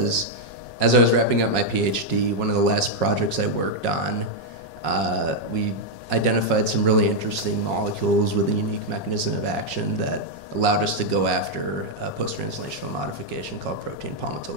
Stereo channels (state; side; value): late; right; 5.5 ms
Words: as I was wrapping up my PhD, one of the last projects I worked on, we identified some really interesting molecules with a unique mechanism of action that allowed us to go after a post-translational modification called protein